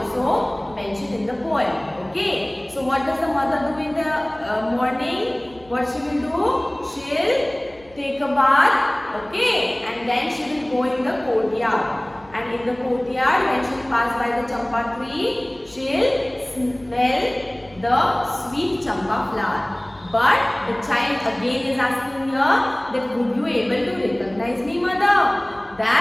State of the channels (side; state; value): left; noise; hum, 27 dB below the sound